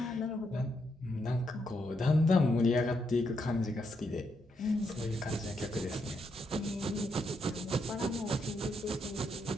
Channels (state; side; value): normal; both; correlation 0.79